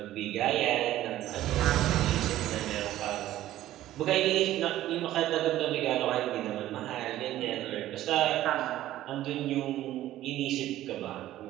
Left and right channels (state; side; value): quieter; left; 14.0 dB